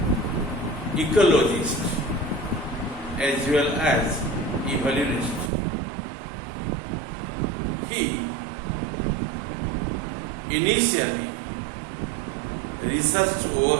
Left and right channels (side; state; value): left; drops out; at 5.5 s